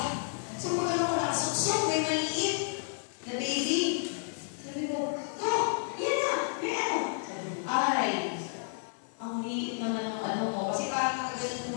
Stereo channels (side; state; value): right; silent; digital silence